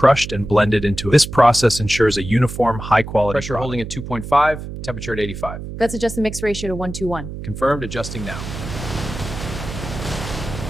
and blended into it. This process ensures a uniform, high-quality pressure Pressure holding at 2.5, temperature at 85. Let's adjust the mix ratio to 1:1. Confirmed, adjusting now.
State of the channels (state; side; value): noise; right; hum, 9 dB below the sound